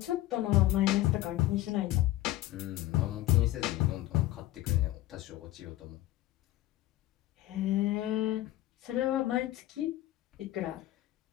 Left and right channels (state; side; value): quieter; right; 15.5 dB